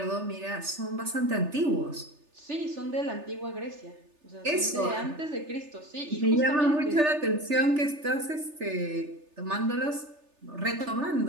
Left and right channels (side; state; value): left; late; 3.3 ms